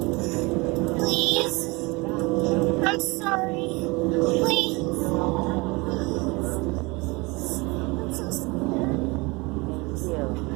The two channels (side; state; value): left; quieter; 25.6 dB